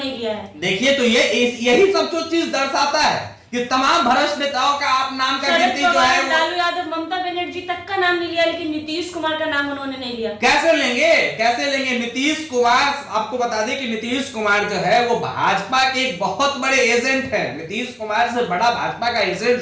लिया है। देखिए तो यही सब जो चीज दर्शाता है कि तमाम भ्रष्ट नेताओं का आप नाम का गिनती जो है, लालू यादव, ममता बनर्जी तक का नाम नहीं लिया, लेकिन नीतीश कुमार का नाम उन्होंने नहीं लिया। कैसे लेंगे नीतीश कुमार? आपको बता दें कि नीतीश कुमार जो है वो भाजपा के एक बहुत बड़े एजेंट है। नीतीश कुमार से बड़ा भाजपा का एजेंट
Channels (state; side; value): identical; both; correlation 1.00